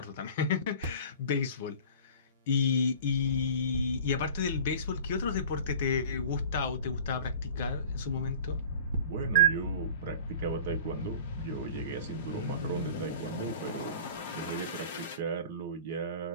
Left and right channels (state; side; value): inverted; both; correlation -0.42